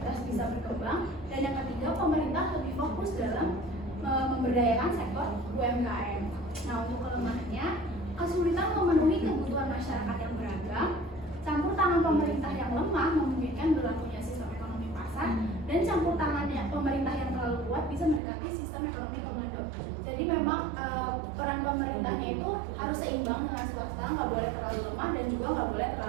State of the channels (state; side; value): drops out; left; at 18.2 s